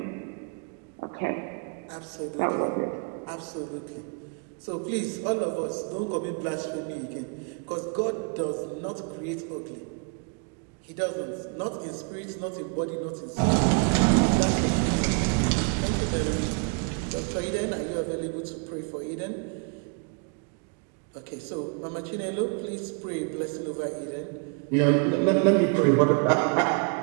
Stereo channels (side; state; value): left; quieter; 36.6 dB